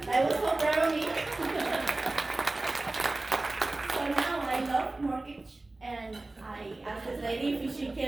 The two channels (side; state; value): left; quieter; 3.0 dB